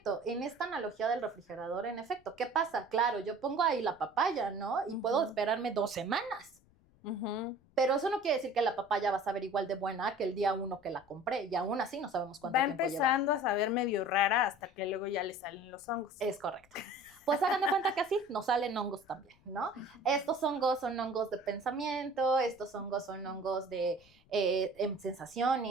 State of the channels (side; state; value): left; noise; rumble, 30 dB below the sound